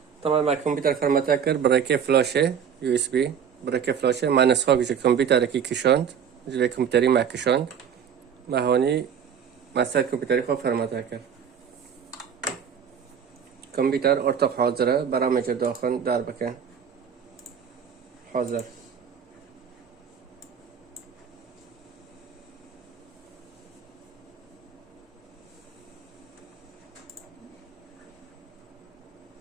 طبعا ما كمبيوتر فرمته كر برای فلاشه یو اس بی برای فلاشه ما نسخه گوشه کمپیوتر کی کشاند جلوی کمپیوتری ما کشاند ما هونی مثلا کمپیوتری خوب فرمته کرد کمپیوتر ارتق حاضره برای مجر داخل در بکن حاضر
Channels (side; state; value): left; quieter; 7.6 dB